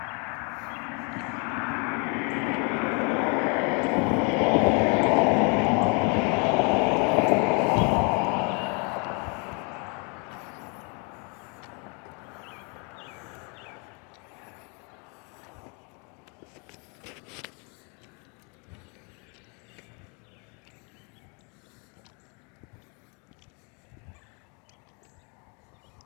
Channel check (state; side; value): quieter; right; 34.4 dB